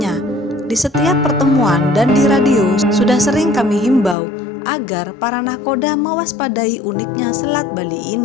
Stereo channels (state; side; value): drops out; right; at 4.2 s